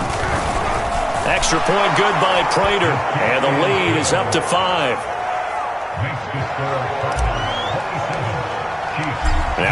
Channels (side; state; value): both; identical; correlation 1.00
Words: Extra point good by Prater. And the lead is up to 5.